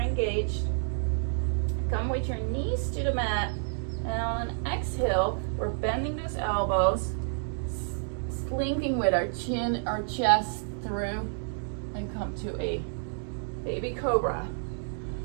Come with your knees to the mat, and on an exhale, we're bending those elbows, slinking with our chin, our chest through, and come to a baby cobra.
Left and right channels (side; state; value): left; silent; digital silence